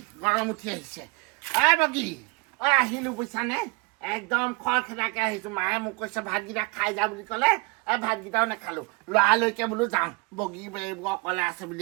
বগী আহিলো বুজিছানে একদম খৰখেদাকে আহিছো মায়ে মোক কৈছে ভাতকেইটা খাই যা বুলি ক'লে ভাতকেইটাও নাখালো লৰালৈকে বোলো যাওঁ বগী অকলে আছে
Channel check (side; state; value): left; quieter; 29.4 dB